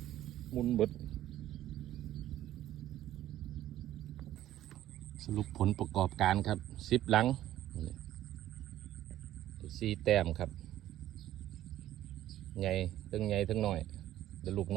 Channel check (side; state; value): left; quieter; 13.2 dB